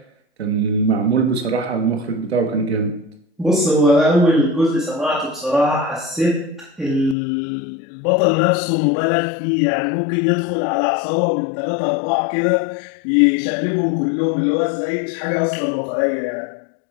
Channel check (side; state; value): right; drops out; at 7.2 s